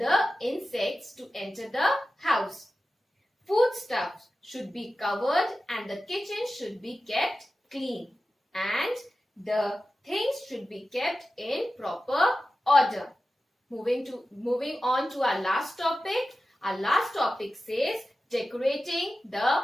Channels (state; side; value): normal; both; correlation 0.94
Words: insects to enter the house. Foodstuffs should be covered and the kitchen should be kept clean. And the things should be kept in proper order. Moving on to our last topic. Our last topic says decorating the